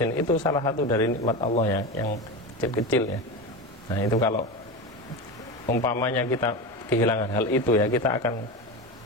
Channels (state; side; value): normal; both; correlation 0.22